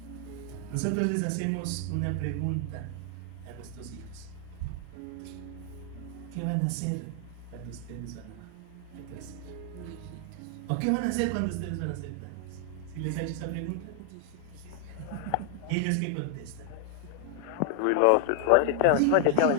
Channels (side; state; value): both; different; correlation 0.00